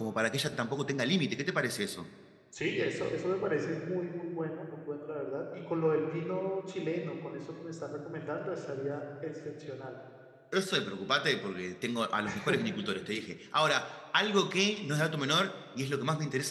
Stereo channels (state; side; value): identical; both; correlation 1.00